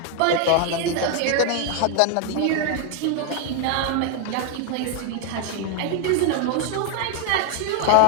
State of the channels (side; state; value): both; different; correlation 0.00